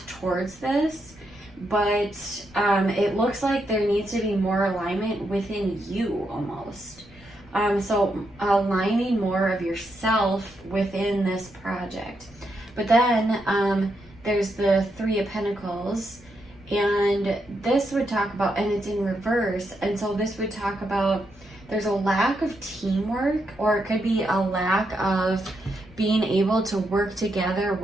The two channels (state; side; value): noise; left; rumble, 25 dB below the sound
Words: towards this, but it looks like there needs to be more alignment within you almost. So aligning more of yourself within this project. But then there's the Three of Pentacles, and this would talk about, and it's in reverse, and so this would talk about there's a lack of teamwork, or it could be a lack of being able to work together